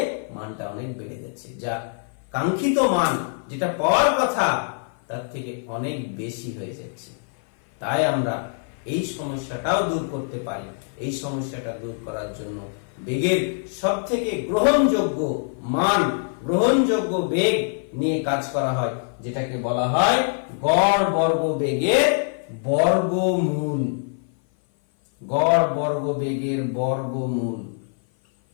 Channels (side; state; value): right; silent; 56 dB below the other